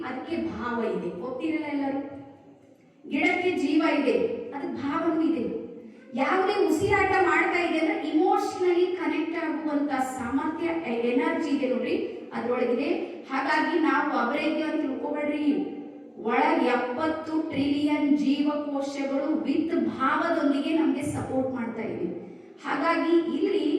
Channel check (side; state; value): both; identical; correlation 1.00